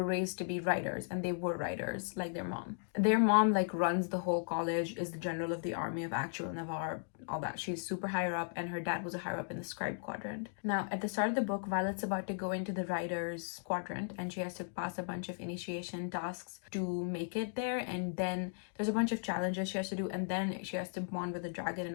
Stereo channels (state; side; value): silent; right; digital silence